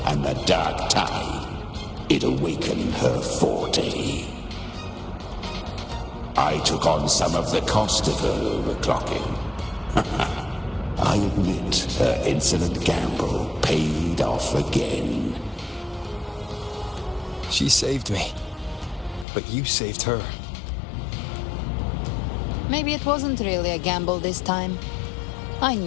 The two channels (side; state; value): right; drops out; at 19.2 s